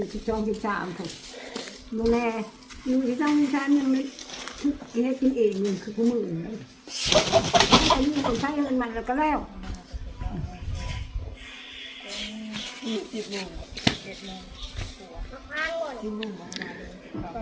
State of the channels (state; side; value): identical; both; correlation 1.00